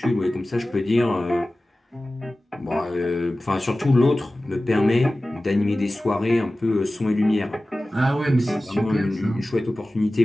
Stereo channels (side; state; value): both; normal; correlation 0.96